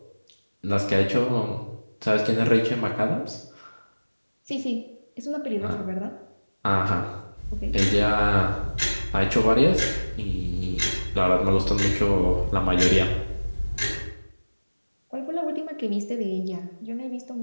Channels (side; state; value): both; inverted; correlation -1.00